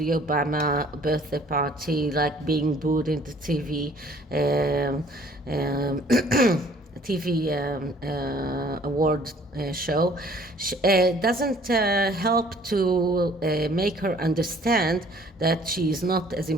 Obama birthday party, like being booed in the TV, TV award show, doesn't help to make her understand that she is not as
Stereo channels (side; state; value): both; normal; correlation 0.56